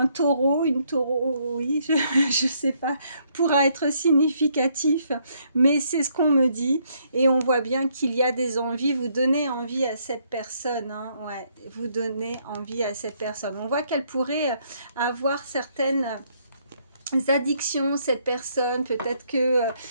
taureau, une taureau, oui, je sais pas, pourra être significatif, mais c'est ce qu'on me dit, et on voit bien qu'il y a des envies, vous donnez envie à cette personne, hein, ouais, vous donnez envie à cette personne. On voit qu'elle pourrait avoir certaines addictions, cette personne, peut-être que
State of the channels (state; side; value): inverted; both; correlation -0.70